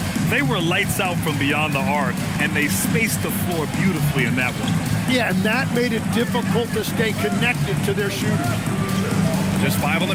They were lights out from beyond the arc, and they spaced the floor beautifully in that one. Yeah, and that made it difficult to stay connected to their shooters. Just 5 on the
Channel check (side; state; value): both; identical; correlation 1.00